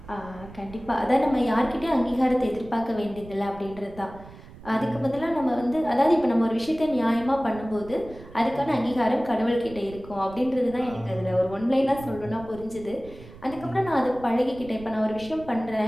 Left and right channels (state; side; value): noise; right; rumble, 18 dB below the sound